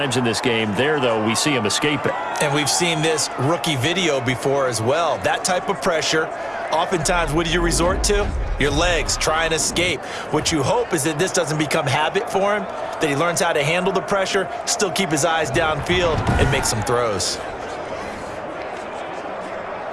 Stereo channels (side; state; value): both; identical; correlation 1.00